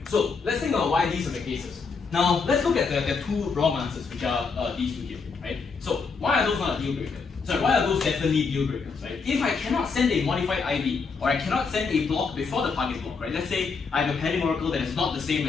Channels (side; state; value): right; quieter; 5.0 dB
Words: So, let's think about why these are the cases. Now, let's look at the 2 wrong answers, which are these 2 here, right? So, why are those not a deal breaker? Sorry, why are those definitely deal breakers, right? If I cannot send a modified IV, or I cannot send a block before the target block, right? Let's say I have a padding oracle that is not the same